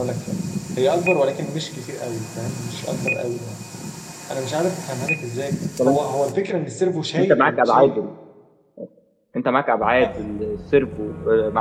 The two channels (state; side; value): identical; both; correlation 1.00